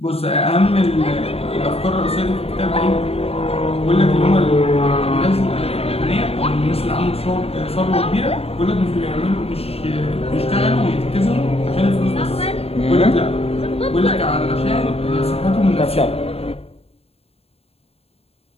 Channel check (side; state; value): right; late; 0.29 ms